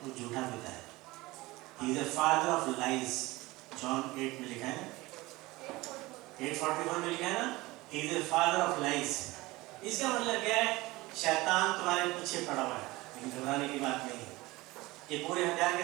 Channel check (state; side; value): quieter; left; 20.6 dB